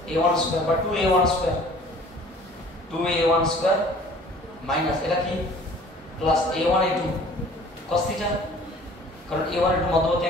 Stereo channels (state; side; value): normal; both; correlation 0.50